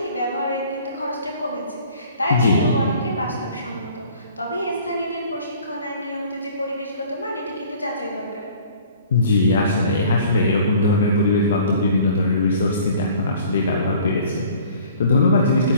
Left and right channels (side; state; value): both; inverted; correlation -0.52